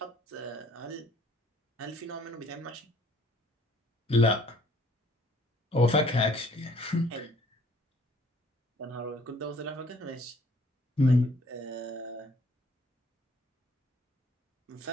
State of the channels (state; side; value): normal; both; correlation 0.59